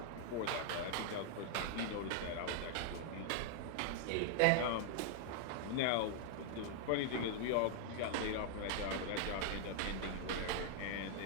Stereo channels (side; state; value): both; different; correlation 0.00